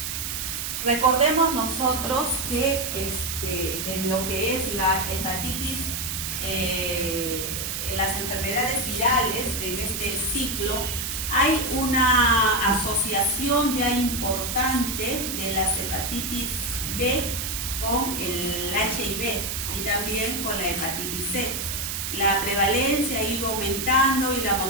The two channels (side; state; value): right; noise; hiss, 3 dB below the sound